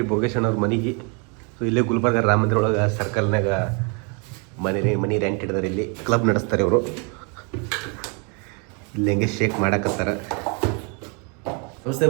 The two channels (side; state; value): left; quieter; 34.8 dB